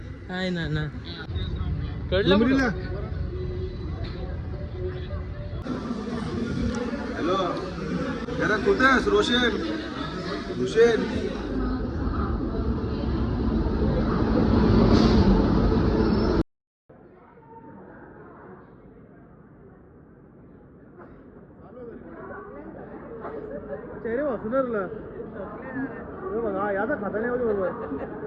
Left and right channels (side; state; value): both; identical; correlation 1.00